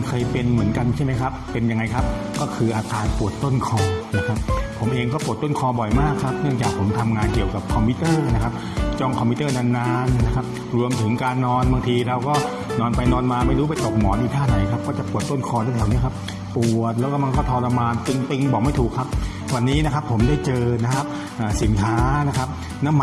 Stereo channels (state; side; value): identical; both; correlation 1.00